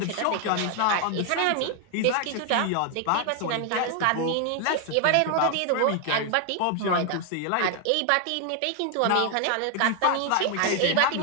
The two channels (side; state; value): both; different; correlation 0.00